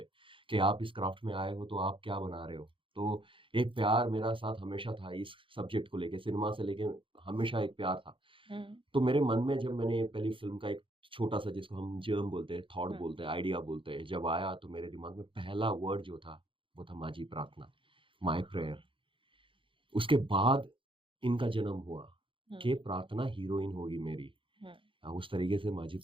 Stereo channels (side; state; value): left; late; 0.25 ms